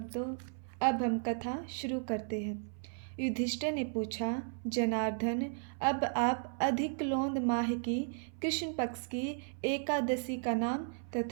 अब हम कथा शुरू करते हैं। युधिष्ठिर ने पूछा, जनार्दन, अब आप अधिक लोंद माह की कृष्ण पक्ष की एकादशी का नाम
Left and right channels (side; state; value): left; silent; 55 dB below the other